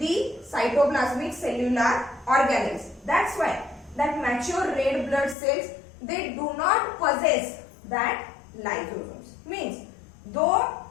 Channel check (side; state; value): right; drops out; at 5.4 s